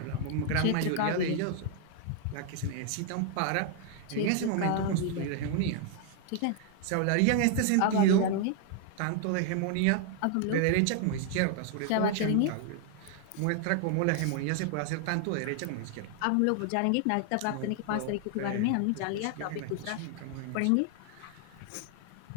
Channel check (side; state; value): both; different; correlation 0.00